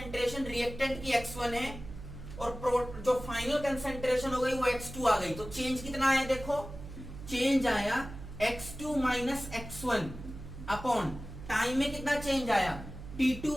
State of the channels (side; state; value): right; noise; hum, 12 dB below the sound